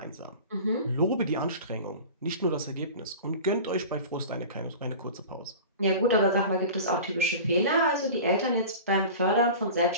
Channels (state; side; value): inverted; both; correlation -0.36